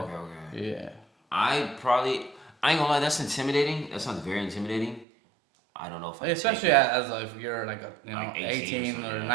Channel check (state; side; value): drops out; left; at 5.1 s